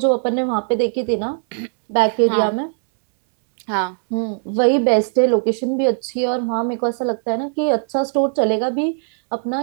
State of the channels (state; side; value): silent; left; digital silence